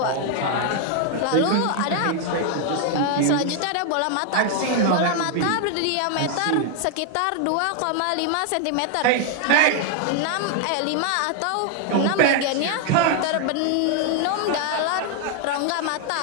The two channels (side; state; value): both; different; correlation 0.00